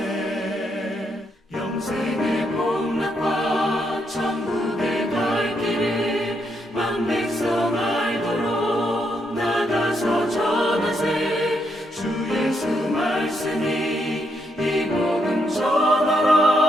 영생의 복락과 천국의 갈 길을 만 백성 알도록 나가서 전하세 주 예수 말씀이 이 복음 전하라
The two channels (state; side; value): normal; both; correlation 0.78